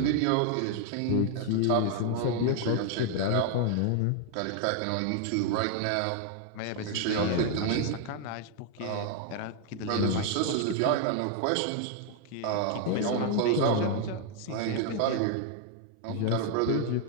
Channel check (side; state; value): both; different; correlation 0.00